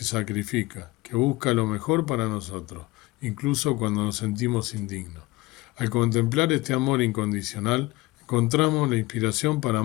sacrifica, que busca lo mejor para nosotros, incluso cuando nos sentimos indignos. Al contemplar este amor incondicional, encontramos la inspiración para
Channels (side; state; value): right; quieter; 20.8 dB